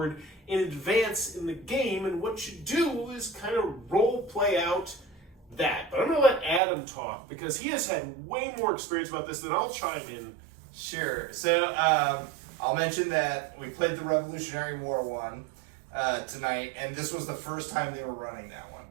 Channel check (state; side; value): drops out; left; at 6.6 s